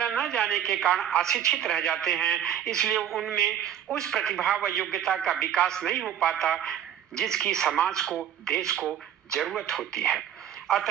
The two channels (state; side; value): quieter; left; 9.9 dB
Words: न जाने के कारण अशिक्षित रह जाते हैं, इसलिए उनमें उस प्रतिभा व योग्यता का विकास नहीं हो पाता जिसकी समाज को, देश को जरूरत होती है।